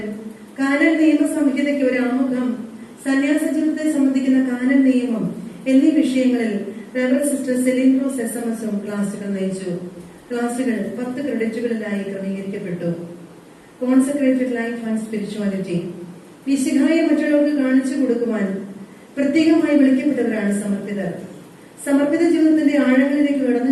കാനൻ നിയമ സംഹിതയ്ക്ക് ഒരു ആമുഖം, സന്യാസ ജീവിതത്തെ സംബന്ധിക്കുന്ന കാനൻ നിയമം എന്നീ വിഷയങ്ങളിൽ സിസ്റ്റർ സെലിൻഡ്രോസ് SMS ക്ലാസുകൾ നയിച്ചു. ക്ലാസുകൾ 10 ക്രെഡിറ്റുകളിലായി ക്രമീകരിക്കപ്പെട്ടു. കോൺസെക്രേറ്റഡ് ലൈഫ് ആൻഡ് സ്പിരിച്വാലിറ്റി, വിശുദ്ധായ മറ്റുള്ളവർക്ക് കാണിച്ചു കൊടുക്കുവാൻ പ്രത്യേകമായി വിളിക്കപ്പെട്ടവരാണ് സമർപ്പിതർ. സമർപ്പിത ജീവിതത്തിന്റെ ആഴങ്ങളിലേക്ക്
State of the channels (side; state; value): both; identical; correlation 1.00